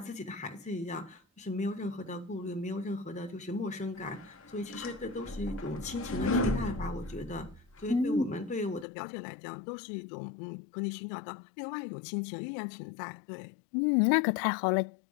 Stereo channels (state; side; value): drops out; right; at 8.8 s